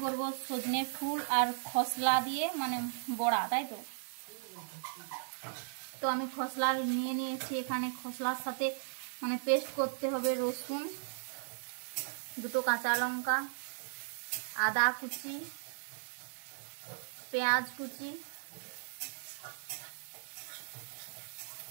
করব সজনে ফুল আর খসলা দিয়ে মানে বড়া, তাই তো। তো আমি খসলা নিয়েছি এখানে। খসলার সাথে মানে পেস্ট করতে হবে রসুন, দুটো কাঁচা লঙ্কা, আদা কুচি, পেঁয়াজ কুচি,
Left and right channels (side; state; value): left; silent; 53 dB below the other